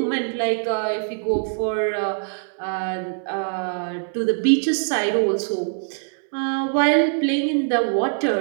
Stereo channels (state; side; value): silent; left; 63 dB below the other